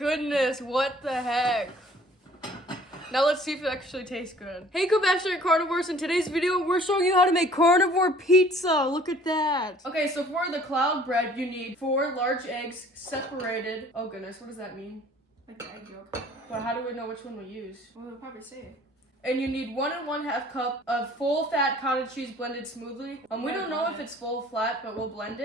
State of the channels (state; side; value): normal; both; correlation 0.53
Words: what the heck? Now let's see if it actually tastes good. Hey Compassionate Carnivores, in today's video, we're showing you how to make carnivore pizza. Look at that. Okay, so for the cloud bread, you need 4 large eggs separated. Oh goodness, what does that mean? Like the egg yolk. But how do we know which one we use? Well, they'll probably say it. And you need 1 1/2 cup of full fat cottage cheese blended smoothly. We don't know if it's full flat, but we'll blend